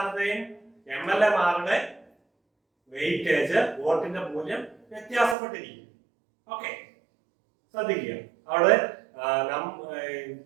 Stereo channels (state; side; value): drops out; left; at 5.4 s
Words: MLA-മാരുടെ വെയിറ്റേജ്, വോട്ടിന്റെ മൂല്യം വ്യത്യാസപ്പെട്ടിരിക്കും. ഓക്കെ, ശ്രദ്ധിക്കുക. അവിടെ